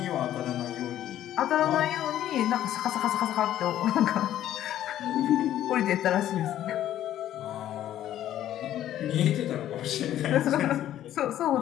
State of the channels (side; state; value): right; quieter; 12.1 dB